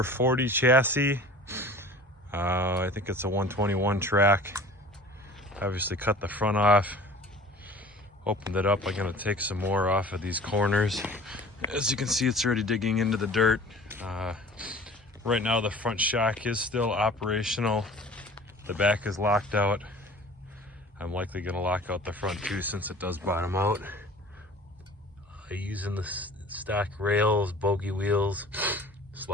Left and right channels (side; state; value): both; normal; correlation 0.44